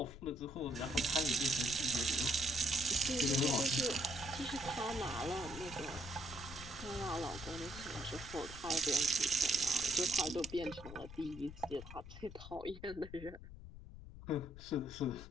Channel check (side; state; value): left; noise; rumble, 13 dB below the sound